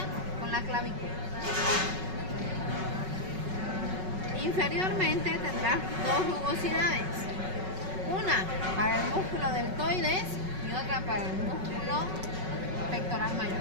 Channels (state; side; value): late; left; 5.4 ms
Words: con la clavícula. Inferiormente tendrá dos rugosidades, una para el músculo deltoides y otra para el músculo pectoral